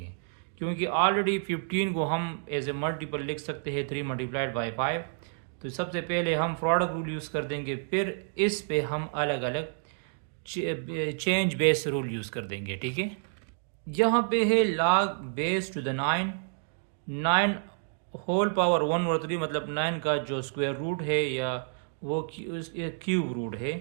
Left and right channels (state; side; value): silent; left; digital silence